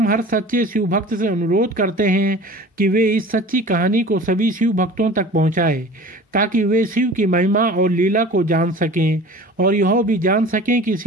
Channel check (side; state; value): both; normal; correlation 0.41